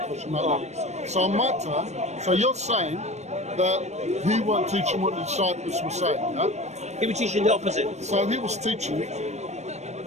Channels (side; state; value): left; late; 0.32 ms